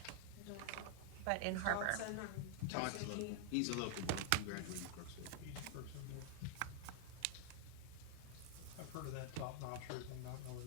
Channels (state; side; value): different; both; correlation 0.00